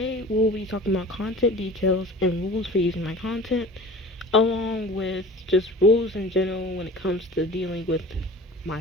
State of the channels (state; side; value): normal; both; correlation 0.41